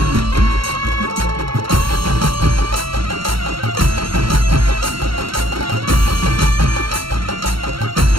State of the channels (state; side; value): late; left; 0.74 ms